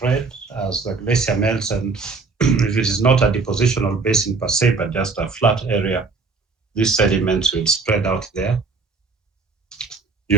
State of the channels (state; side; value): quieter; left; 4.3 dB